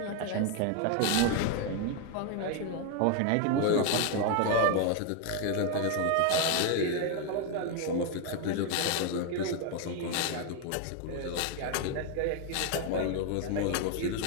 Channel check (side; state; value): both; different; correlation 0.01